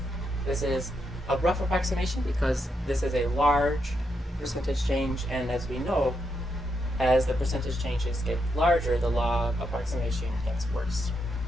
This is a rough approximation because this is a large percentage change, and as we know, as the percentage changes get larger, the log approximation gets worse.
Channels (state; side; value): normal; both; correlation 0.81